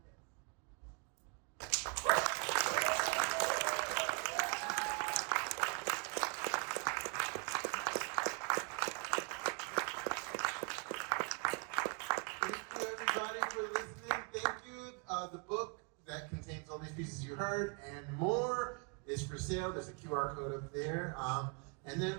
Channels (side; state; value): left; quieter; 36.1 dB